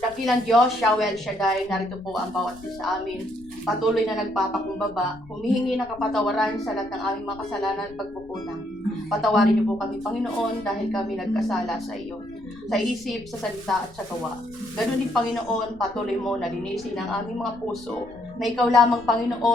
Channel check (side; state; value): left; noise; rumble, 23 dB below the sound